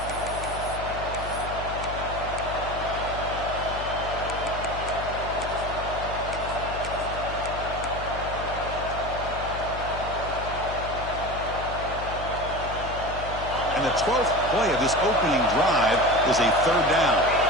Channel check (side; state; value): left; noise; hum, 9 dB below the sound